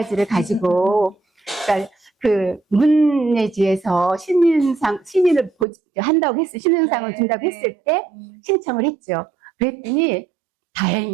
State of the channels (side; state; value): left; drops out; at 5.7 s